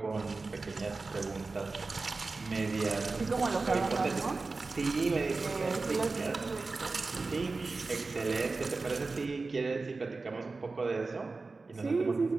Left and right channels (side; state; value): left; quieter; 3.8 dB